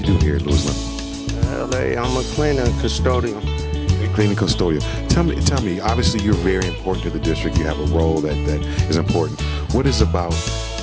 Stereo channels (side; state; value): both; identical; correlation 1.00